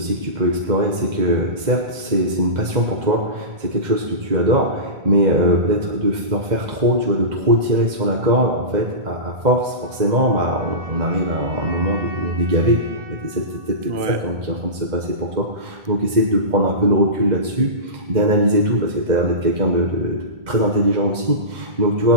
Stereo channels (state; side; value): late; left; 2.0 ms